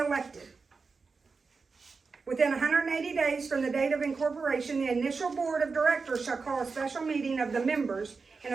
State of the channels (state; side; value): quieter; left; 4.6 dB